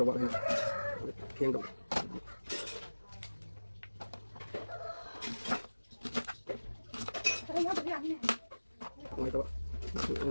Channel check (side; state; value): both; inverted; correlation -1.00